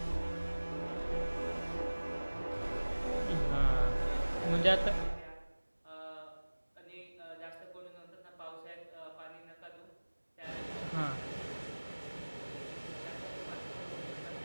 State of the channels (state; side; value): inverted; both; correlation -1.00